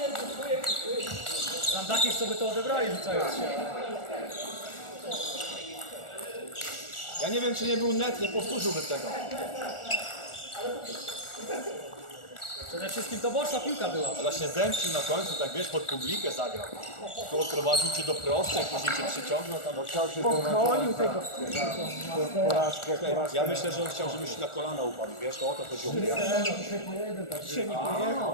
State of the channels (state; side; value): late; right; 1.4 ms